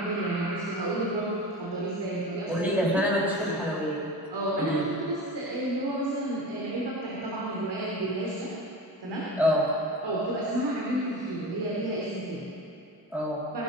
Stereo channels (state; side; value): normal; both; correlation 0.31